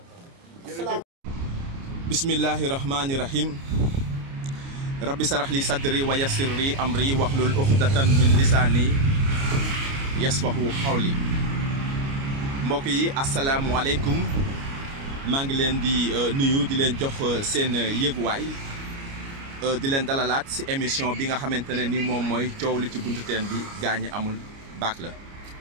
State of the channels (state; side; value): late; left; 29 ms